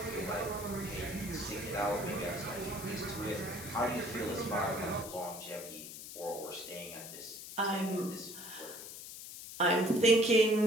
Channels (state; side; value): noise; left; hiss, 11 dB below the sound